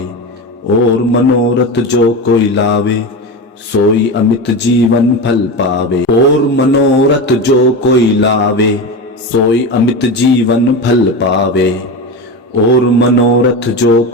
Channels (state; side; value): normal; both; correlation 0.22